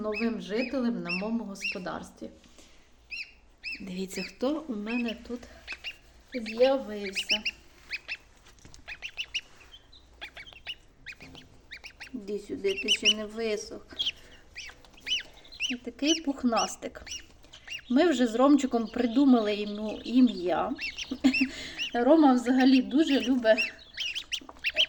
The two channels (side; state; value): both; identical; correlation 1.00